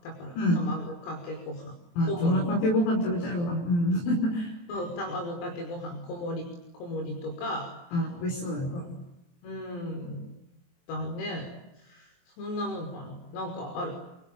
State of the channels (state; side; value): late; right; 23 ms